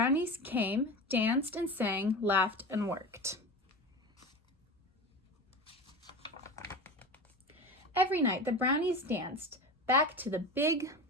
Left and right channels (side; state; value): both; normal; correlation 0.28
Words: came, danced and sang, laughed and worked. Every night the brownies danced back to the big